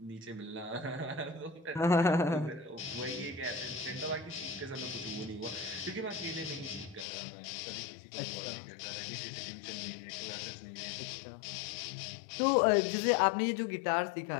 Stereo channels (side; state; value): right; drops out; at 7.1 s